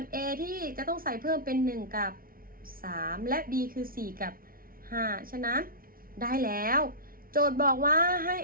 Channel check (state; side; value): late; left; 0.42 ms